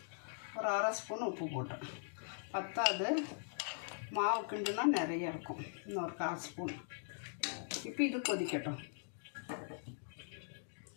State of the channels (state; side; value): silent; right; digital silence